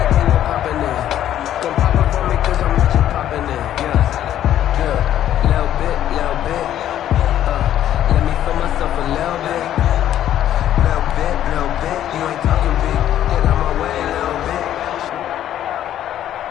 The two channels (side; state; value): right; quieter; 11.5 dB